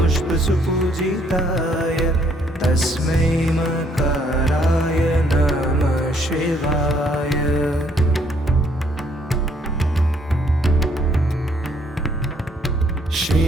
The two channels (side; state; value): both; normal; correlation 0.66